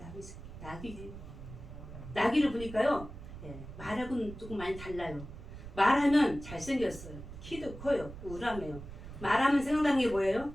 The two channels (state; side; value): noise; right; rumble, 12 dB below the sound